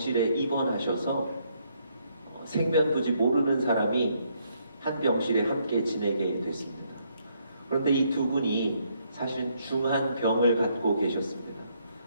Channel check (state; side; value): inverted; both; correlation -0.72